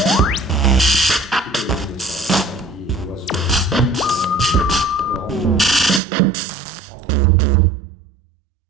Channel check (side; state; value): left; drops out; at 6.0 s